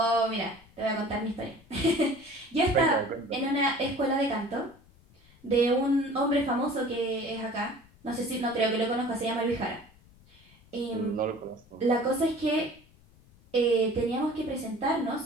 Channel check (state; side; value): noise; left; rumble, 27 dB below the sound